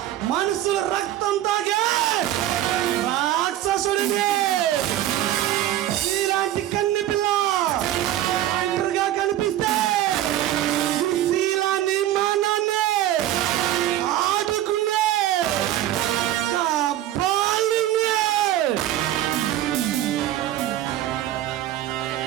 మనసు రక్తం తాగే రాక్షసుడిని ఇలాంటి కన్నె పిల్ల ఒంటరిగా కనిపిస్తే శీలాన్ని మానాన్ని ఆడుకునే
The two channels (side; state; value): left; quieter; 13.0 dB